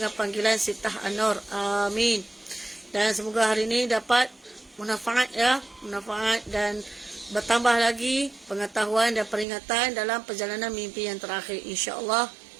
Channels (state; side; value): drops out; left; at 9.5 s